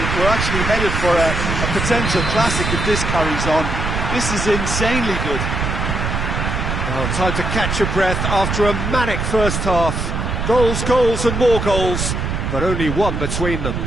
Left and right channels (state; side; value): noise; right; rumble, 2 dB below the sound